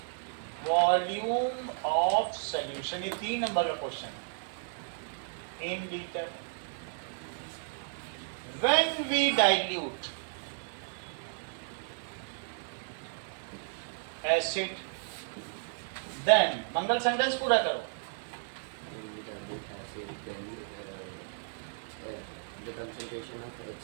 वॉल्यूम ऑफ सॉल्यूशन। ये 3 नंबर का क्वेश्चन है, in litre. When we dilute acid, then Mangal sentence पूरा करो। When we dilute acid, then the concentration of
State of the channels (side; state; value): left; silent; 55 dB below the other